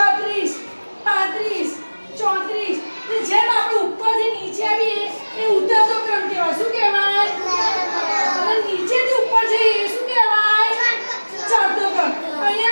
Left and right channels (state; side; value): inverted; both; correlation -1.00